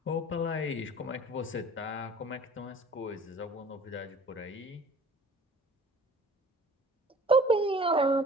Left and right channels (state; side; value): normal; both; correlation 0.48